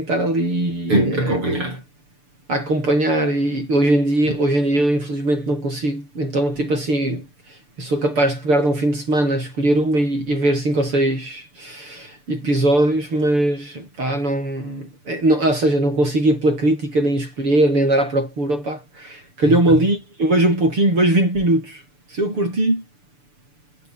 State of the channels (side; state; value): left; late; 6.9 ms